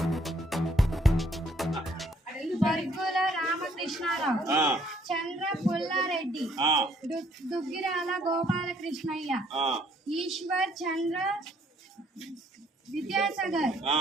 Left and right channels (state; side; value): normal; both; correlation 0.64